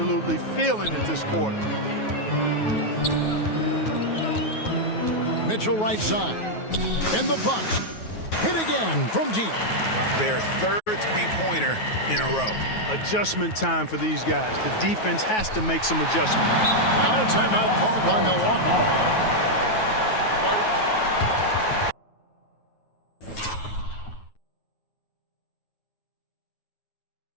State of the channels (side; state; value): right; late; 9.3 ms